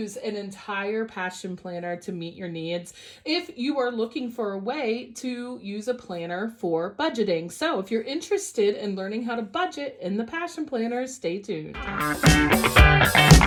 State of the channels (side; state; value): both; identical; correlation 1.00